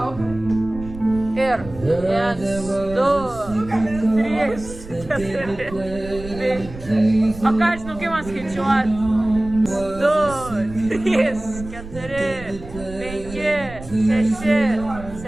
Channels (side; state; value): right; noise; rumble, 14 dB below the sound